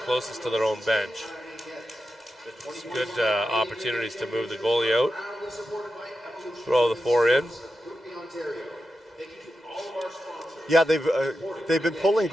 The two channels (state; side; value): normal; both; correlation 0.90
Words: closest to their own bench. It's good opportunities to move the goalie out. Throw the 4 in. Yeah, they've been pulling